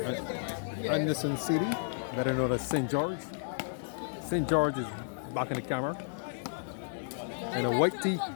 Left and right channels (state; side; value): silent; right; digital silence